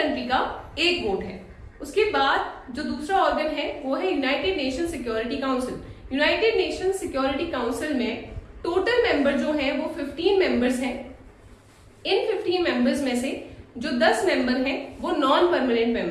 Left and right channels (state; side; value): identical; both; correlation 1.00